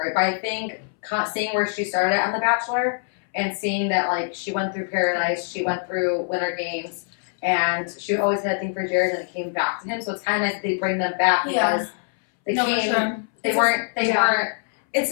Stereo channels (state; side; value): silent; right; 63 dB below the other